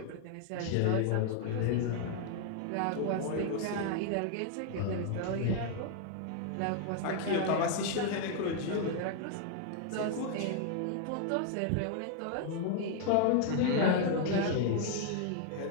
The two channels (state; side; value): different; both; correlation 0.00